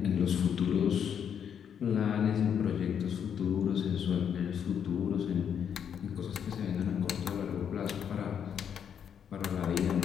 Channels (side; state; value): right; quieter; 8.1 dB